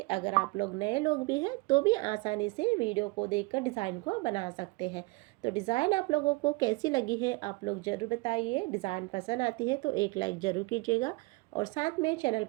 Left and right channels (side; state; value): left; quieter; 24.7 dB